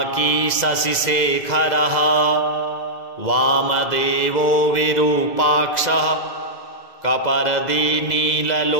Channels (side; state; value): right; late; 2.0 ms